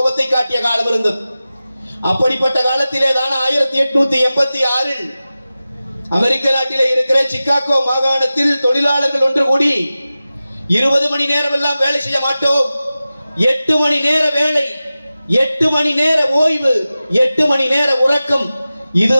காட்டிய காலம் இருந்தது. அப்படிப்பட்ட காலத்திலே தான் 1886 அமெரிக்க நாட்டிலே இருக்கிற சிகாகோ மாகாணத்தில் தொழிலாளர்கள் ஒன்று கூடி 20 மணி நேரம் எல்லாம் வேலை செய்ய மாட்டோம், 8 மணி நேர வேலை, 8 மணி நேர ஓய்வு, 8 மணி நேர உறக்கம்,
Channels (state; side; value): inverted; both; correlation -0.95